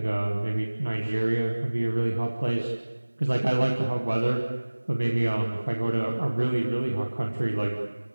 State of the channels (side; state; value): both; inverted; correlation -1.00